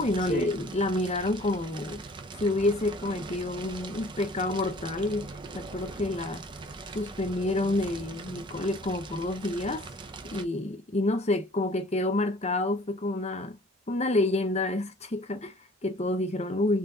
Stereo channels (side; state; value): both; normal; correlation 0.52